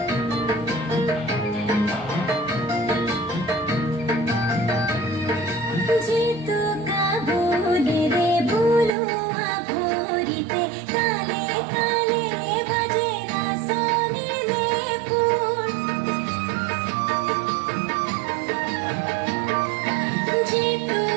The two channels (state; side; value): drops out; left; at 8.9 s